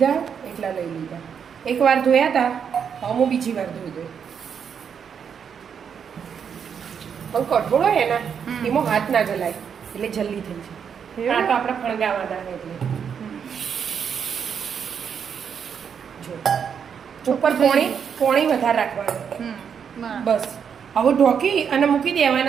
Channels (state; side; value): quieter; left; 7.3 dB